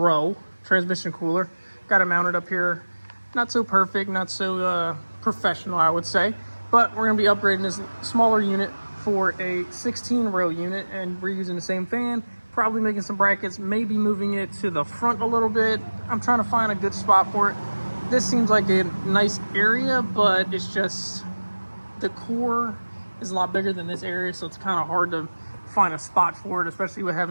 transmission cooler. Got it mounted up here. Not so perfect, not so professional, I would say. But we're going to be upgrading this smaller unit for a 16-row unit, and we're using the same fan. Probably making some brackets, maybe moving it to the front a little bit. I'm trying to find a good spot for it. This seems like a nice area, but it's just the core is a lot bigger than this area, so it's kind of hard to find a spot for it, especially with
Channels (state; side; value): inverted; both; correlation -1.00